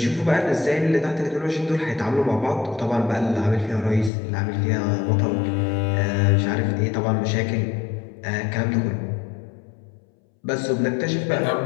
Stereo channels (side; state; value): right; drops out; at 4.1 s